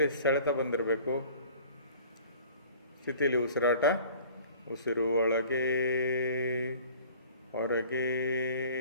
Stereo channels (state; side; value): inverted; both; correlation -0.47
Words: ಸೆಳೆತ ಬಂದಿರಬೇಕು. ಸ್ಥಿತಿಯಲ್ಲಿ ಉಸಿರಾಟ. ಉಸಿರು ಒಳಗೆ ಹೊರಗೆ,